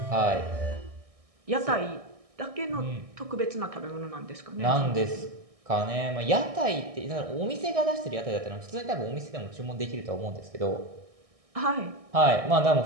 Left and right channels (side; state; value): left; late; 1.6 ms